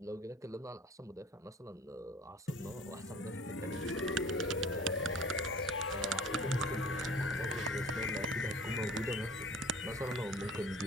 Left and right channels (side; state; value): both; normal; correlation 0.46